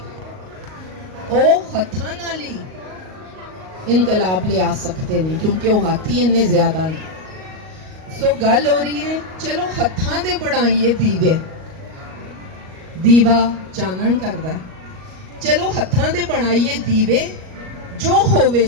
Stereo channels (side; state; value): left; late; 38 ms